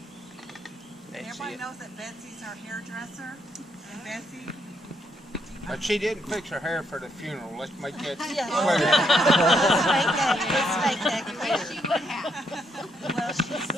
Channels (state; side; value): normal; both; correlation 0.75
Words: Everybody knows that Betsy's our hairdresser, and Betsy. But she didn't fix her hair for the funeral. Let's make that clear. Let's make that clear. Well, she